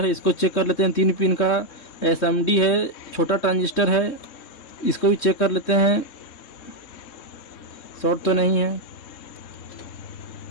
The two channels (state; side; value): late; right; 3.7 ms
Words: है, इसको चेक कर लेते हैं। 3 पिन का एसएमडी है, छोटा ट्रांजिस्टर है, इसको भी चेक कर लेते हैं, शॉर्ट तो नहीं है।